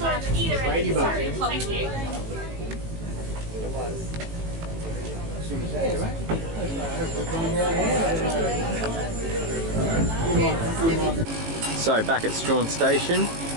at either end of the room. Thank you. So back at Strahan Station,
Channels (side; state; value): left; late; 18 ms